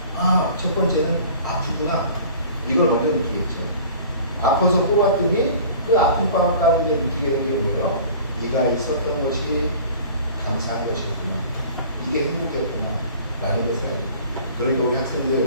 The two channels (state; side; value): inverted; both; correlation -0.45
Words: 아, 첫 번째는 아프구나. 이걸 먼저 느끼겠죠. 아파서 뽑았더니 그 아픈 방 가운데 느끼게 된 게 뭐예요? 이가 있었던 것이 감사한 것이었구나. 이게 행복했구나. 라는 것을 알게 돼요. 그러니까 우리